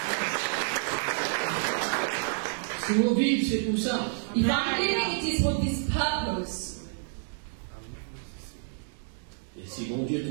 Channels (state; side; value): silent; left; 58 dB below the other